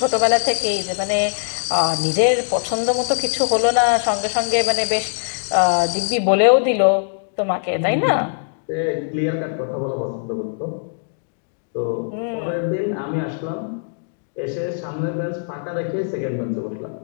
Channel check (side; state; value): right; silent; digital silence